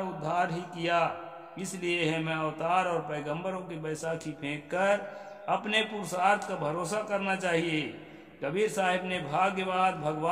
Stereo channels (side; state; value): both; identical; correlation 1.00